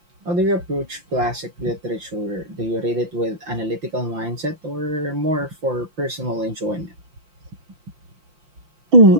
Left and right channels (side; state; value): left; late; 5.8 ms